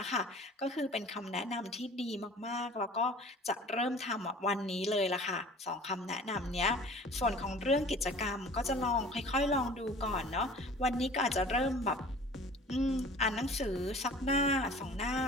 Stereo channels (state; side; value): normal; both; correlation 0.45